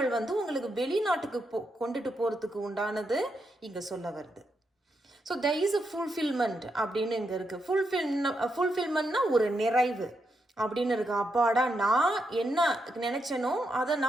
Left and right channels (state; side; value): normal; both; correlation 0.82